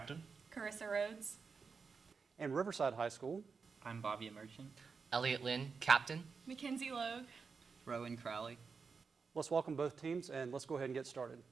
Carissa Rhodes. And Riverside High School. I'm Bobby Merchant. Elliot Lynn, captain. Mackenzie Logue. Rowan Crowley. Let's welcome both teams and let's go ahead and get started.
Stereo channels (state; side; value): quieter; left; 5.2 dB